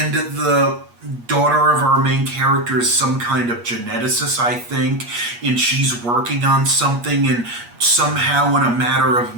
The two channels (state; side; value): late; left; 8.4 ms